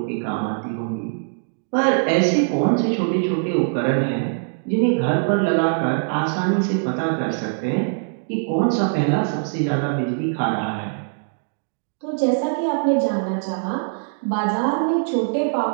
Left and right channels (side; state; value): left; silent; digital silence